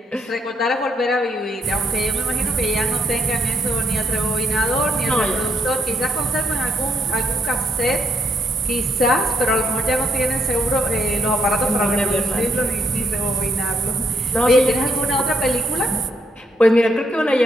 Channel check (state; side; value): normal; both; correlation 0.75